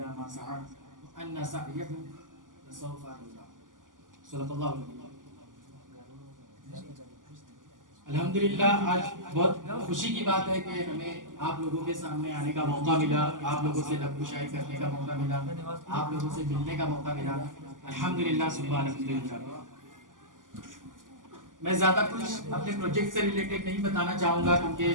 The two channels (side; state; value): left; late; 0.88 ms